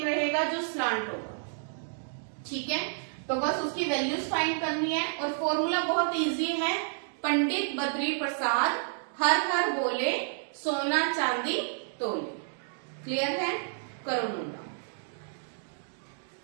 रहेगा जो स्लांट होगा, ठीक है। तो बस उसकी वैल्यूज फाइंड करनी है, और फॉर्मूला बहुत इजी है, पंडित बद्री प्रसाद हर हर बोले सोना चांदी तोले। क्लियर है, करो मुंडा।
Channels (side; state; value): left; silent; digital silence